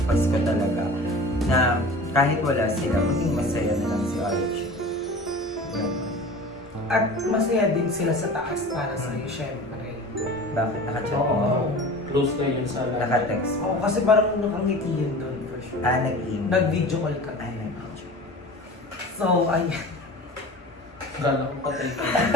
Pasko talaga na kahit wala sila, maging masaya na lang si Archie. At masaya din sila sa taas para sa'yo, syempre. Bakit? Naka-chat Oo. mo? Close kayo yun sa Naka-text. Oo, kasi parang nakangiti yun doon for sure. Nag-email. Nag-video call ka. Ay, nag-video. So, ayan. Gala ko patay ko.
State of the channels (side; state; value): both; normal; correlation 0.38